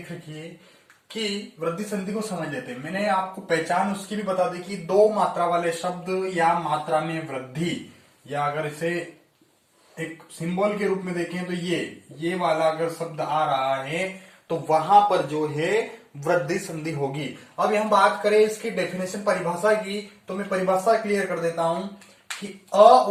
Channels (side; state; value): both; identical; correlation 1.00